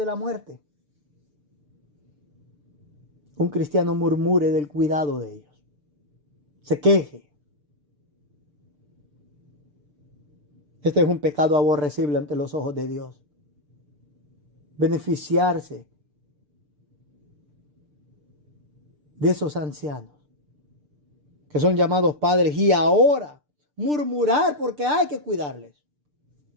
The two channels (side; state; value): left; late; 6.7 ms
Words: la muerte, un cristiano murmure del cuidado de ellos. Se queje. Este es un pecado aborrecible ante los ojos de Dios. Beneficiarse de esos ancianos que son llamados padres y ahora murmurar porque hay que cuidarles.